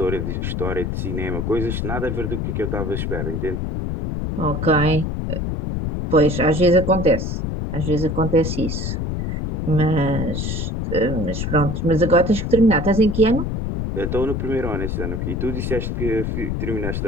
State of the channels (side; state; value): left; noise; rumble, 2 dB below the sound